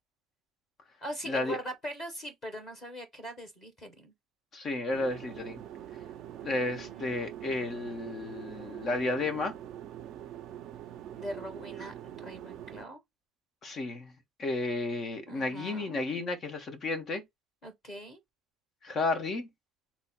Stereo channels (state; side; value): normal; both; correlation 0.60